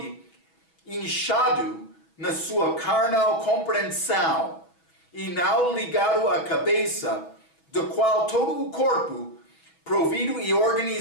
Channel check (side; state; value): right; late; 6.2 ms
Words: inchado na sua carnal compreensão, e não ligado à cabeça, do qual todo o corpo, provido e